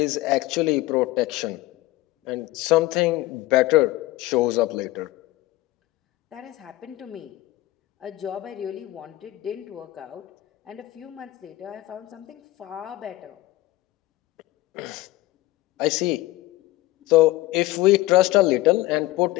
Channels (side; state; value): right; quieter; 17.7 dB